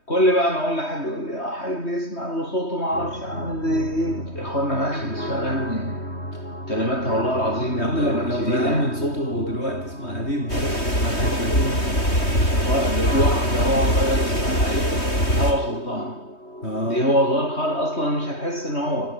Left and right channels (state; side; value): late; right; 3.2 ms